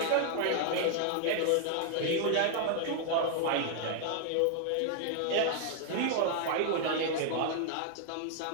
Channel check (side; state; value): both; different; correlation 0.00